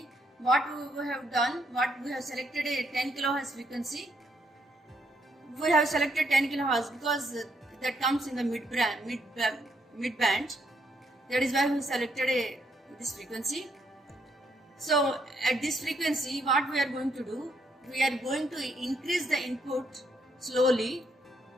what we have done, we have selected a 10 kHz frequency. We have selected 10 kHz because that comes in the mid band. That is why we selected this frequency. So at this frequency, what we are going to do, we are going to increase the input slowly,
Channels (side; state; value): both; normal; correlation 0.73